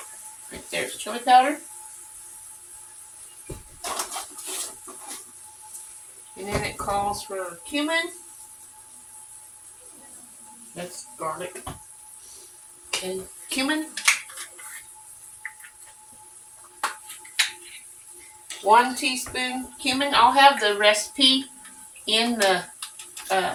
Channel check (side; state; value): both; identical; correlation 1.00